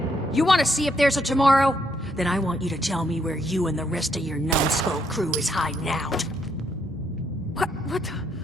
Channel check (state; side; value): normal; both; correlation 0.73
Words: You want to see if there's a tomorrow? Then I want you to tell me where you and the rest of your numbskull crew is hiding out. What